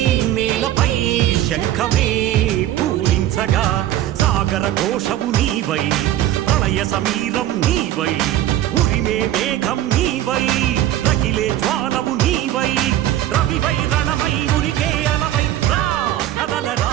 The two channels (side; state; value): left; quieter; 12.9 dB